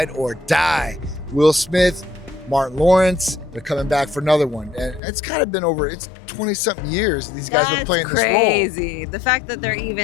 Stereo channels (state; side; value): drops out; right; at 5.0 s